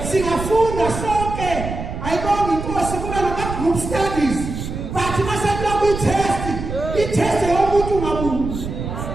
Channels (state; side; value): noise; right; rumble, 6 dB below the sound